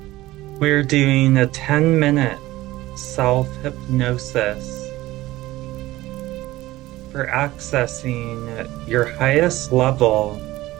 We're doing a 10-minute self-hypnosis for accessing your highest level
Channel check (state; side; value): quieter; left; 17.4 dB